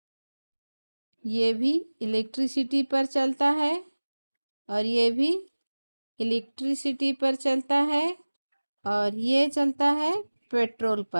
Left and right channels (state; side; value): inverted; both; correlation -1.00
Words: ये भी इलेक्ट्रिसिटी पर चलता है और ये भी इलेक्ट्रिसिटी पर चलता है और ये चलता है पेट्रोल